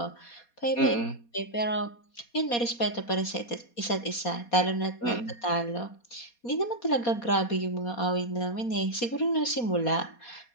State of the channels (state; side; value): late; right; 4.2 ms